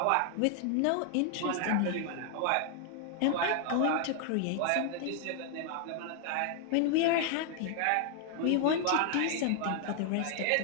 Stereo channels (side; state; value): both; different; correlation 0.00